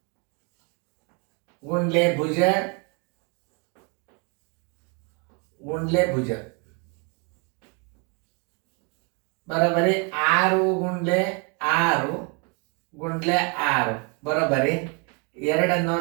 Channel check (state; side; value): quieter; left; 33.8 dB